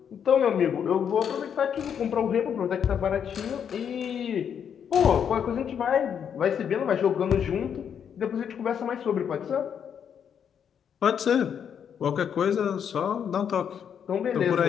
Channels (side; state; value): right; quieter; 8.1 dB